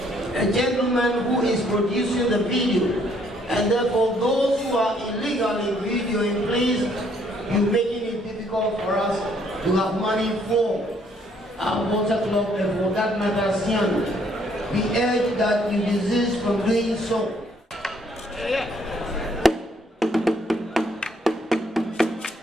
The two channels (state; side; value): normal; both; correlation 0.66